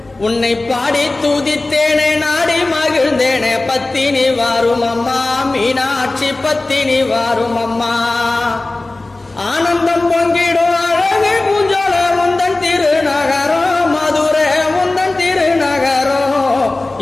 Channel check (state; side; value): quieter; right; 3.0 dB